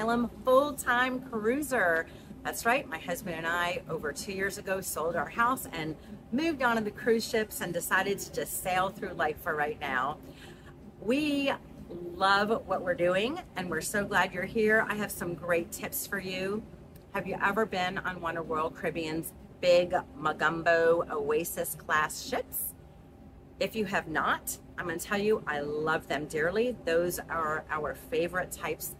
full-time cruiser. That's right, my husband and I over 2 years ago sold our house and moved on to the cruise ships and decided to just sail through life for right now. We love what we're doing and we're so glad you're here. I have some great tips for you. Have you ever been on one of Royal Caribbean's big Magumbo Oasis Class ships? If you have not, I'm going to tell you, I love them dearly. Those are our favorite types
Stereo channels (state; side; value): identical; both; correlation 1.00